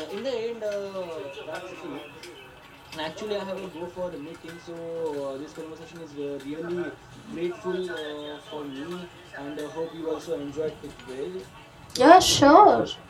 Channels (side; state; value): both; identical; correlation 1.00